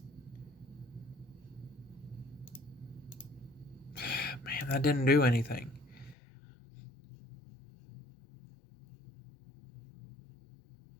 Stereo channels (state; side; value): drops out; right; at 6.2 s